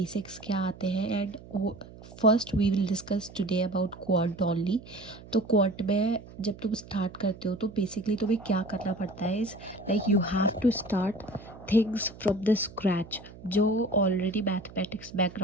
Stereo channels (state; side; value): noise; right; hum, 18 dB below the sound